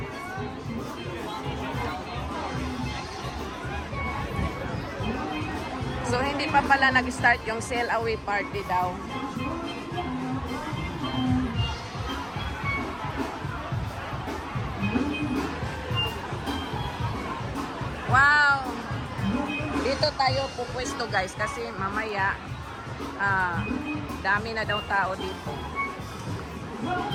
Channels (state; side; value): identical; both; correlation 1.00